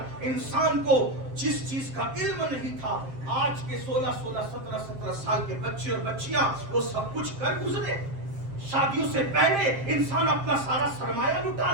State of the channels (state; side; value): late; left; 7.5 ms